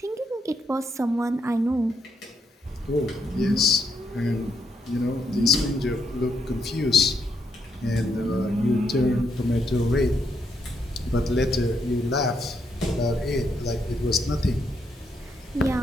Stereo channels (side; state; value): both; normal; correlation 0.77